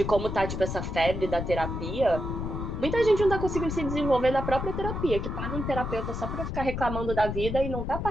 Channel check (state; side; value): noise; left; rumble, 4 dB below the sound